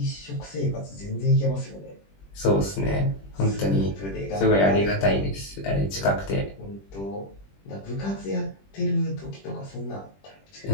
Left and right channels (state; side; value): late; right; 20 ms